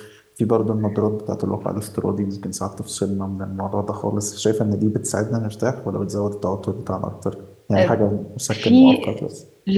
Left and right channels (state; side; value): identical; both; correlation 1.00